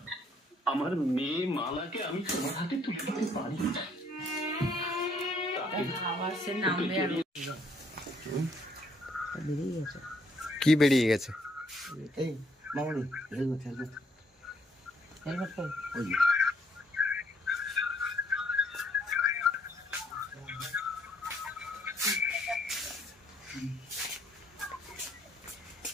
আমার মেয়ে মালাকে আমি তোমার হাতে তুলে দিতে পারি। কি বেরিয়ে গেছে? এই মামনি হেলমেট হেলমেট हेलमेट को ওই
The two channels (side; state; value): both; normal; correlation 0.68